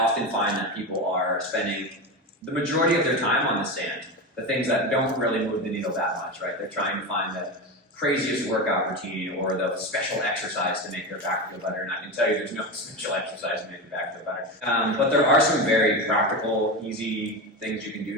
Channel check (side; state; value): both; normal; correlation 0.20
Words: find that people are spending the majority of their time on the sand, the things that don't really move the needle that much, right? They're trying to find the craziest workout routine or the special exercise to make their back feel better. And I can tell you there's no special exercise to make your back feel better. But there are some very practical, easy things you can